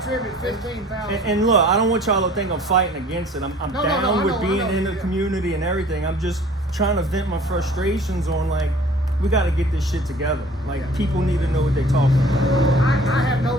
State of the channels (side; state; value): both; normal; correlation 0.50